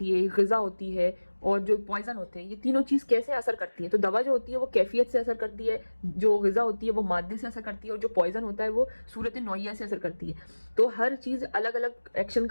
है, ग़िज़ा होती है और जो पॉइजन होते हैं, ये तीनों चीज़ कैसे असर करती है। तो दवा जो होती है वो कैफियत से असर करती है, जो ग़िज़ा होती है वो मादे से असर करती है, और जो पॉइजन होता है वो सूरत नौइया से असर करती है। तो हर चीज़ अलग अलग एक्शन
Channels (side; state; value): both; inverted; correlation -1.00